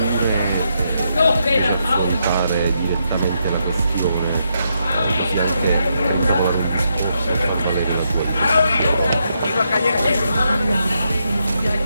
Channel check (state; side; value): inverted; both; correlation -0.79